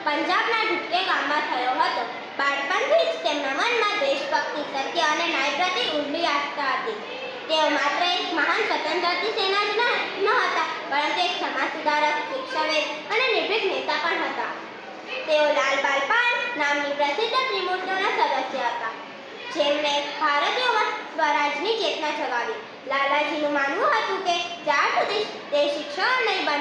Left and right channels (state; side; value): identical; both; correlation 1.00